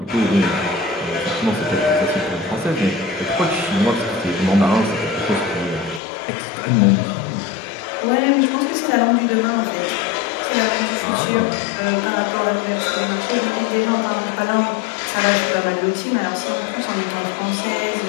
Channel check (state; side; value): drops out; right; at 6.0 s